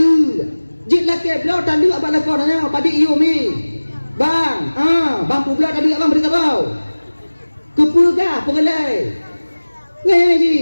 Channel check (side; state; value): both; inverted; correlation -1.00